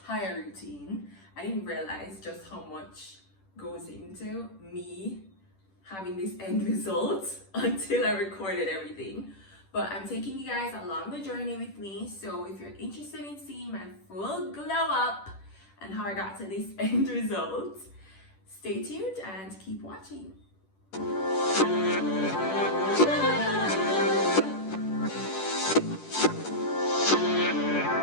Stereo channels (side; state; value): right; late; 10 ms